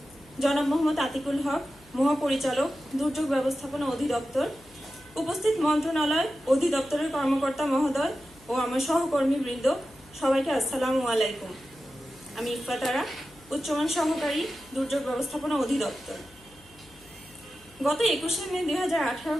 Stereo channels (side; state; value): left; noise; hum, 26 dB below the sound